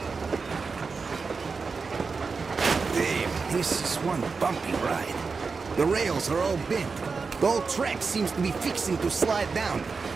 Damn, this is one bumpy ride. The rails are all bent. The whole track seems to be fixing to slide down.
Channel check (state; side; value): quieter; left; 4.7 dB